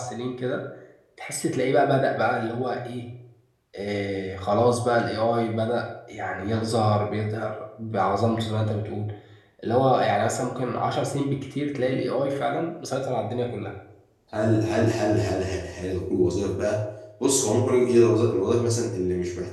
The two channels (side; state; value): both; identical; correlation 1.00